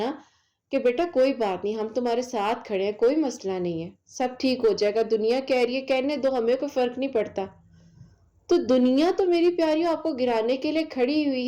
کہ بیٹا کوئی بات نہیں، ہم تمہارے ساتھ کھڑے ہیں، کوئی مسئلہ نہیں ہے، سب ٹھیک ہو جائے گا، دنیا کہہ رہی ہے کہنے دو، ہمیں کوئی فرق نہیں پڑتا. تو دنیا تو میری پیاریوں آپ کو گرانے کے لیے کھڑی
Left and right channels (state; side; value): identical; both; correlation 1.00